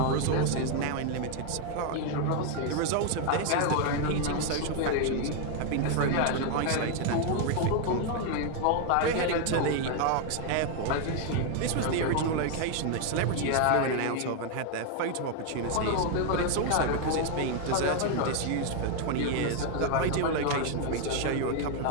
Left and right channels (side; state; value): both; different; correlation 0.00